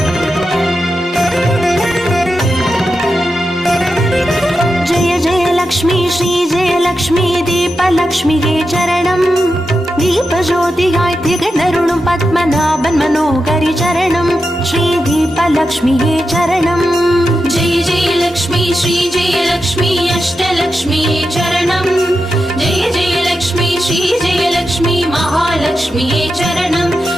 दीपलक्ष्म्ये चरणम् दीपज्योतियाय तिगणरुणुं पद्मनाभन् मनोहरि चरणम् श्री दीपलक्ष्म्ये चरणम् जय जय लक्ष्मी श्री जय लक्ष्मी अष्टलक्ष्म्ये चरणम् जय जय लक्ष्मी श्री जय लक्ष्मी महालक्ष्म्ये चरणम्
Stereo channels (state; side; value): normal; both; correlation 0.89